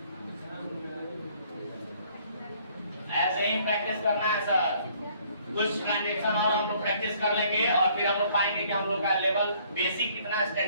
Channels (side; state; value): both; inverted; correlation -0.61